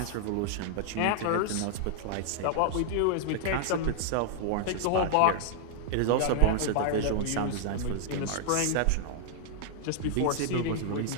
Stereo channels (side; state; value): both; different; correlation -0.01